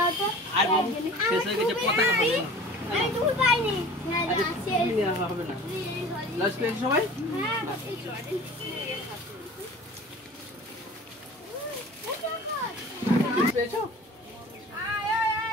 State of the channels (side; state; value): both; normal; correlation 0.42